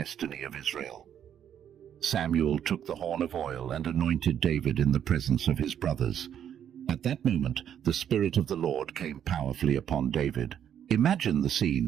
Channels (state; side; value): quieter; left; 9.4 dB